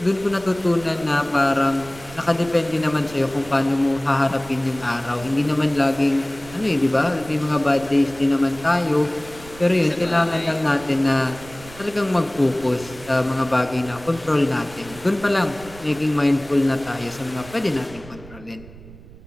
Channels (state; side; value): noise; right; rumble, 19 dB below the sound